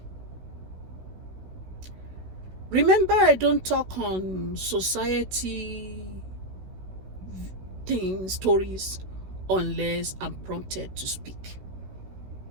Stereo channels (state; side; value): late; left; 16 ms